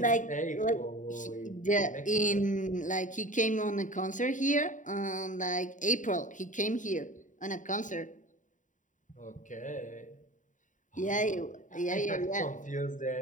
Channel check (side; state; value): right; late; 0.37 ms